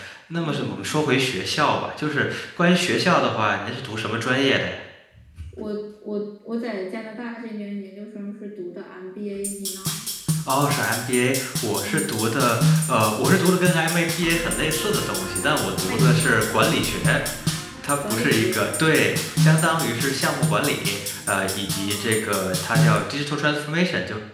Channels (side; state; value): both; identical; correlation 1.00